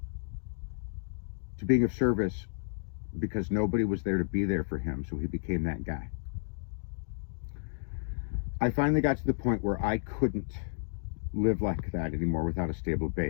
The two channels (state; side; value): silent; right; digital silence